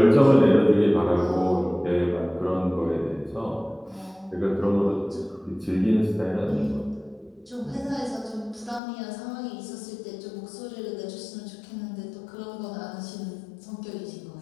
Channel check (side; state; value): right; drops out; at 8.8 s